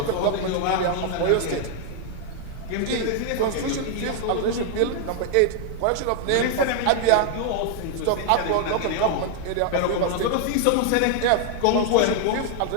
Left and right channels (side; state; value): both; different; correlation 0.00